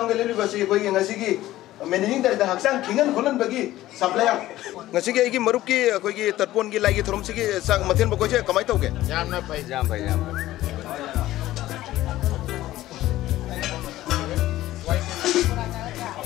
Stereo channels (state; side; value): quieter; right; 15.3 dB